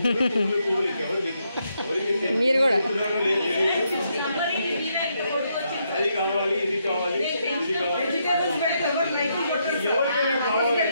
పువ్వులకి ఎవరికి లేదు, అది కావాలి, ఇది కావాలి, ఇది కావాలి.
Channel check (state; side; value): inverted; both; correlation -0.78